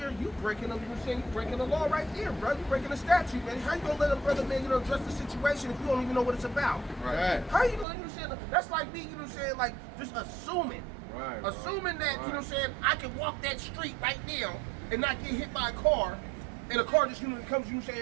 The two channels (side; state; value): left; drops out; at 7.9 s